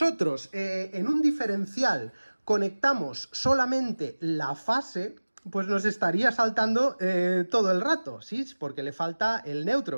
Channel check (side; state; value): both; inverted; correlation -1.00